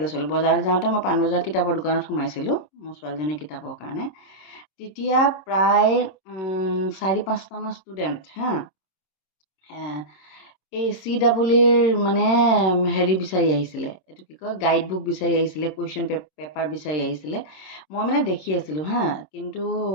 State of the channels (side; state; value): right; late; 26 ms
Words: গৈছিলোঁ। বজাৰলৈ যাওঁতে মই পাণবজাৰ কিতাপৰ দোকানত সোমাইছিলোঁ মোৰ ছোৱালীজনীৰ কিতাপৰ কাৰণে। তেতিয়া প্ৰায় 4-5টামান ষ্টুডেণ্ট এই CEEৰ মানে হেৰি বিচাৰি আহিছিলে, এইটো কি কয়, গাইড বুক বিচাৰি আহিছিলে, কুৱেশ্যন পেপাৰ বিচাৰি আহিছিলে। মই মানে দেখি আছিলোঁ কিন্তু